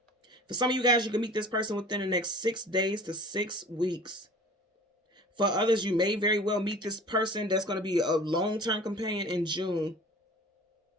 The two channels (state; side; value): normal; both; correlation 0.43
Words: For some of you guys, you can meet this person within the next 6 days to 6 weeks. For others, you may very well meet this person that's going to be a long-term companion in June.